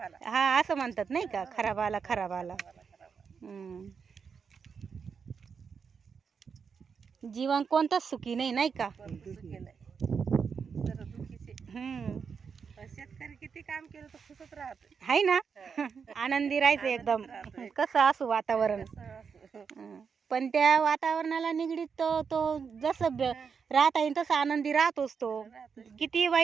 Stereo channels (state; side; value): quieter; left; 6.1 dB